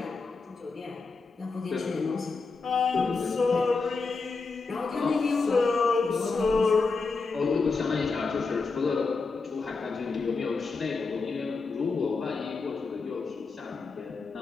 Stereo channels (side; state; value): right; quieter; 4.3 dB